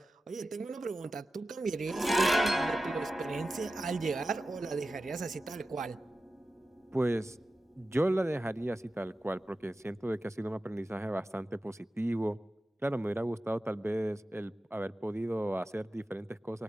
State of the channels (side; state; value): both; normal; correlation 0.94